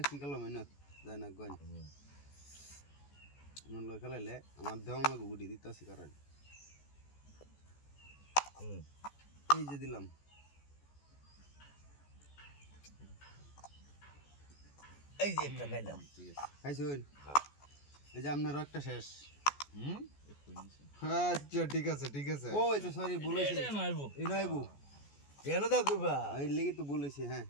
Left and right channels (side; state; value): right; late; 14 ms